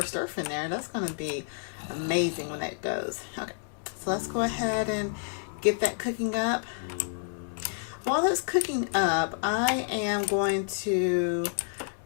Earth in there. That's going to be amazing when that goes. Okay. So let's go ahead and get that cooking up. While that's cooking up, I am going to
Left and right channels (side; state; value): right; silent; 58 dB below the other